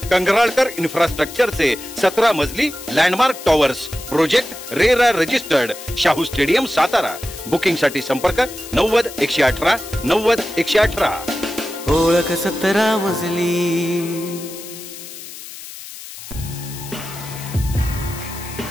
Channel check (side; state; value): left; noise; hiss, 13 dB below the sound